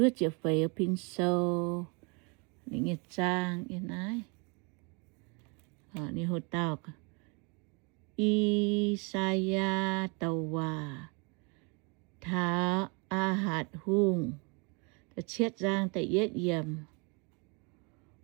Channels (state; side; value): quieter; left; 32.1 dB